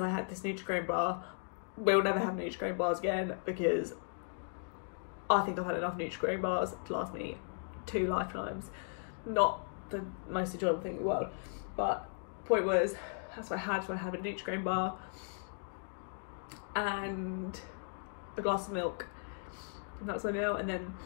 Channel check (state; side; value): silent; right; digital silence